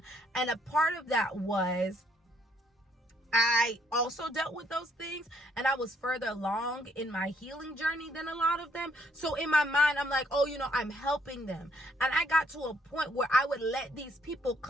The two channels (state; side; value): normal; both; correlation 0.69